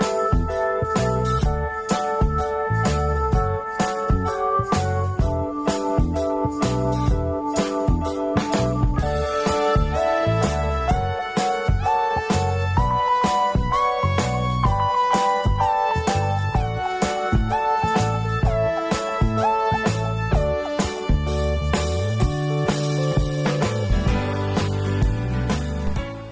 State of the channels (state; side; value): identical; both; correlation 1.00